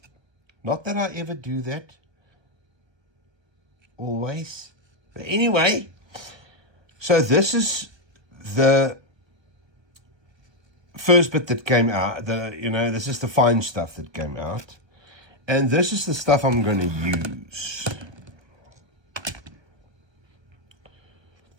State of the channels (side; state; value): left; late; 1.3 ms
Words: Not that I ever do that. Always. But anyway, so this is the first bit that came out. This is the fine stuff that came out. And this is the stuff I'm going to use.